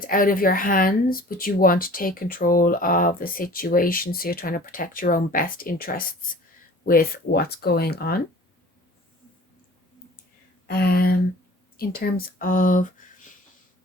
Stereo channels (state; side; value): normal; both; correlation 0.46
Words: out of your hands, but you want to take control of the situation, so you're trying to protect your own best interests with what's going on. um in terms of